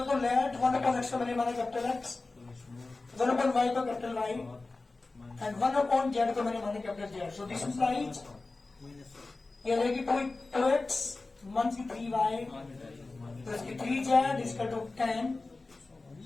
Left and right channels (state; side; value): quieter; right; 3.5 dB